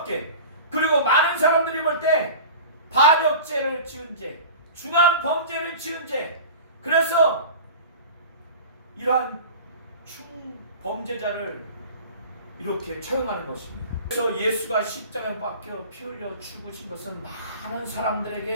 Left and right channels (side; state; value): both; inverted; correlation -0.37